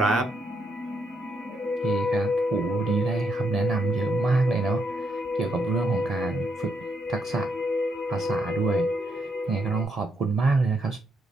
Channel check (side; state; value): both; normal; correlation 0.78